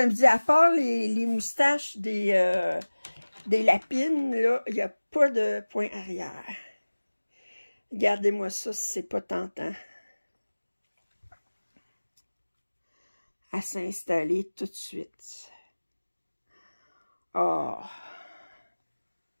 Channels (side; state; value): both; inverted; correlation -1.00